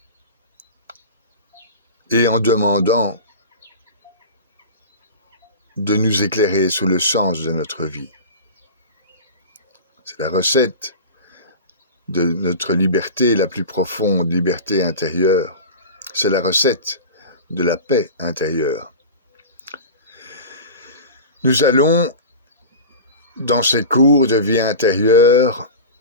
et en demandant de nous éclairer sur le sens de notre vie. C'est la recette de notre liberté la plus profonde, liberté intérieure. C'est la recette de la paix intérieure. Nous allons, dans ces cours de vie intérieure,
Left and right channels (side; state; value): both; inverted; correlation -0.31